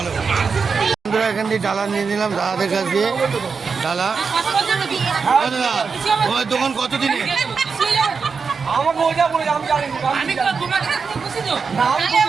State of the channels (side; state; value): left; quieter; 5.3 dB